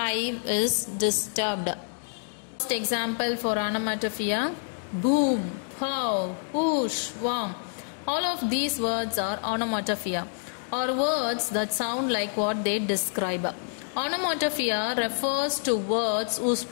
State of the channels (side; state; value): right; silent; digital silence